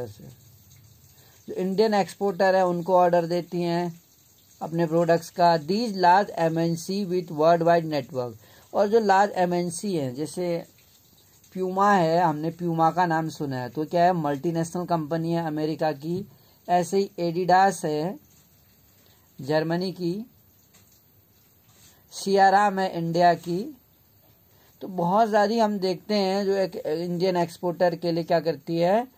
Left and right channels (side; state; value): both; identical; correlation 1.00